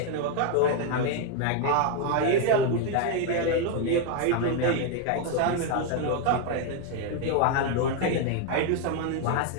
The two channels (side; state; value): both; different; correlation 0.01